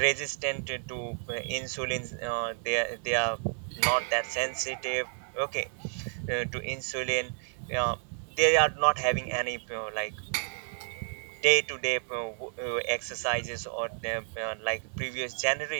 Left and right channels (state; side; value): silent; left; 57 dB below the other